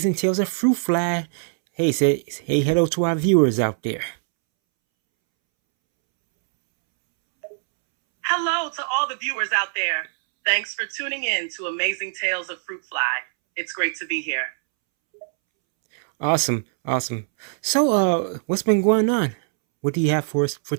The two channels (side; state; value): left; silent; 64 dB below the other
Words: Tales of Fruit Fly. Hey, hey, hello to our viewers out there. Hello to all the viewers out there. Thanks for tuning in to Amazing Tales of Fruit Fly. It's great to be here. Awesome, awesome. So, what's been going on? What do you have for us for